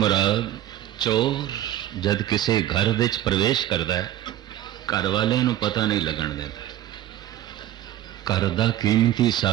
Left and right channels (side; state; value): left; quieter; 12.9 dB